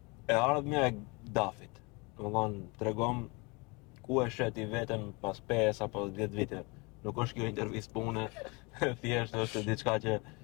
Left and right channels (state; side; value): quieter; right; 28.3 dB